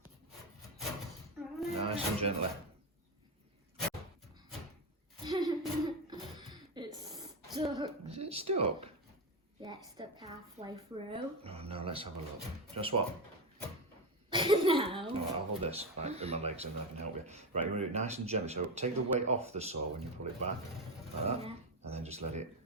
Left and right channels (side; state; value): both; normal; correlation 0.13